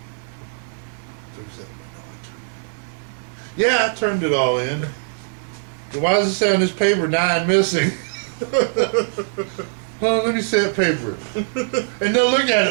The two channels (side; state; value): left; silent; 59 dB below the other